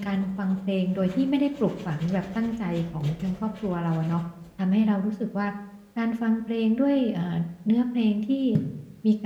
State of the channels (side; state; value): both; identical; correlation 1.00